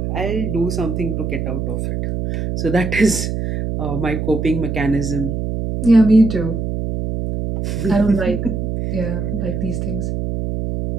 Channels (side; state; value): right; noise; hum, 2 dB below the sound